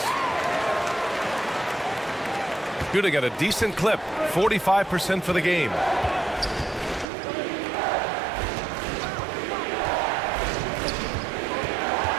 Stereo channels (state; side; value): drops out; left; at 7.1 s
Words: Shooting at a decent clip, 45% for the game.